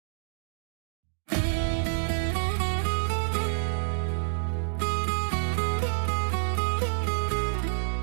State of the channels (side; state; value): left; silent; digital silence